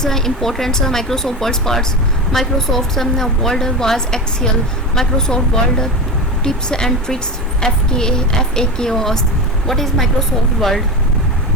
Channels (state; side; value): normal; both; correlation 0.23